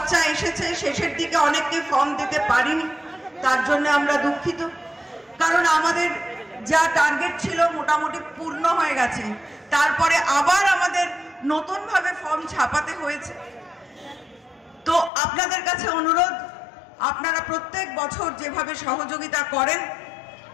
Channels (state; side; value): drops out; right; at 15.1 s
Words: এসেছে শেষের দিকে অনেককে ফর্ম দিতে পারিনি, তার জন্য আমরা দুঃখিত। কারণ আমাদের যা টার্গেট ছিল মোটামুটি পূর্ণ হয়ে গেছে, তারপরে আবার আমাদের নতুনভাবে ফর্ম ছাপাতে হয়েছে। তো আপনাদের কাছে অনুরোধ, আপনারা প্রত্যেক বছর যেভাবে সহযোগিতা করেন